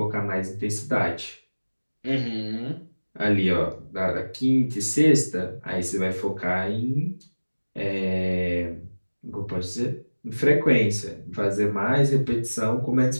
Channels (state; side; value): inverted; both; correlation -1.00